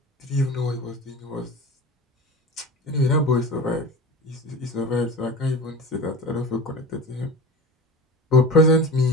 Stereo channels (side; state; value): both; normal; correlation 0.32